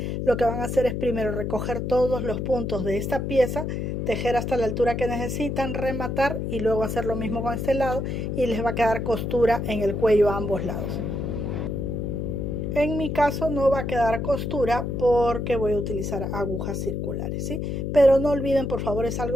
lo que van a hacer es primero recoger todos los puntos de esta pieza, tejer hasta la altura que necesitan, rematar, y luego hacer lo mismo con este lado, y les va a quedar costura en el cuello a ambos lados. En mi caso no va a quedar costura porque voy a utilizar agujas circulares, ¿sí? Pero no olviden, por favor, es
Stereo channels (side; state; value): left; noise; hum, 2 dB below the sound